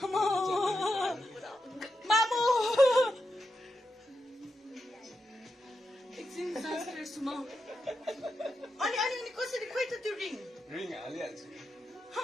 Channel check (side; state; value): both; normal; correlation 0.86